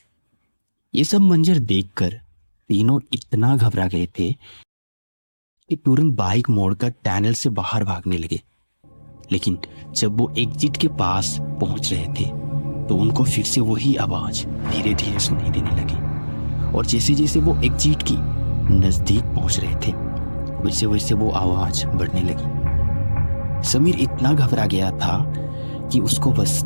ये सब मंजर देखकर तीनों इतना घबरा गए थे कि तुरंत बाइक मोड़कर टनल से बाहर भागने लगे। लेकिन जब वो एग्जिट के पास पहुंच रहे थे तो उनको फिर से वही आवाज धीरे धीरे सुनाई देने लगी। और जैसे जैसे वो एग्जिट की नजदीक पहुंच रहे थे वैसे वैसे वो आवाज बढ़ने लगी। समीर इतना घबरा गया था कि उसको बस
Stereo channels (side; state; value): both; inverted; correlation -1.00